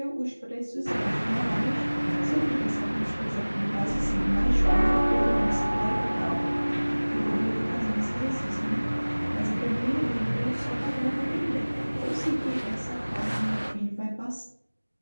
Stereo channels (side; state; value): both; inverted; correlation -1.00